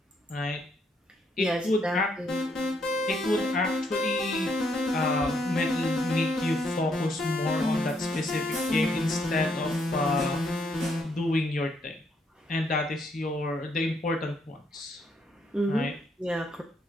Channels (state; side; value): normal; both; correlation 0.73